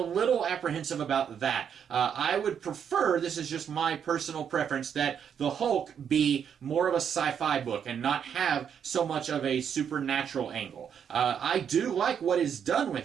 little apprehensive about that. I would prefer, this is just my personal preference, that the Hulk be more of a sci-fi book and not have so much of a supernatural angle. I do like what is done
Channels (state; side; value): quieter; left; 8.0 dB